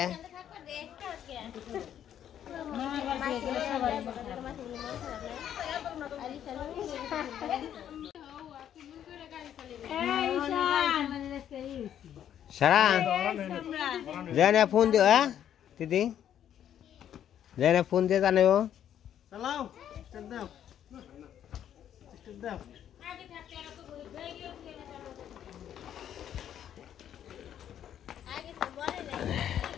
সারা জানে ফোন দিও হ্যাঁ দিদি জানে ফোন দিয়ে জানাও চালাও দাও দাও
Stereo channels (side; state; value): right; quieter; 10.1 dB